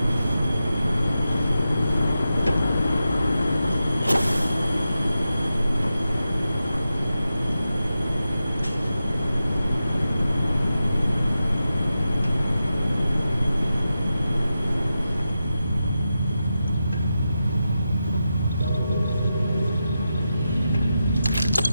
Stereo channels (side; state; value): both; inverted; correlation -0.90